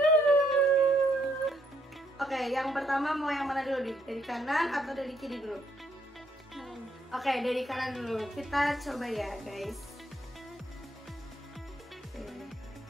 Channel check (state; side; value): normal; both; correlation 0.72